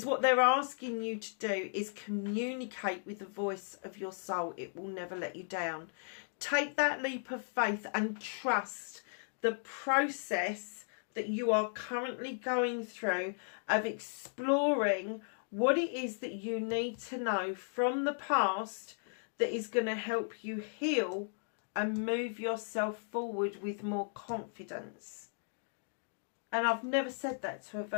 what they're asking you to do is communicate with the voice of your soul. It will never let you down. Take that leap of faith and trust the process that you are currently going through of exploring what it is that you need to know from the past that is going to help you heal and move yourself forward with more confidence. And I've never said that to a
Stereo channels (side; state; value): right; silent; digital silence